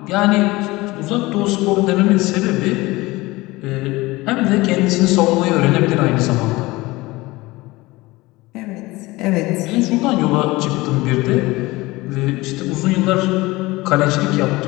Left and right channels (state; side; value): quieter; right; 20.8 dB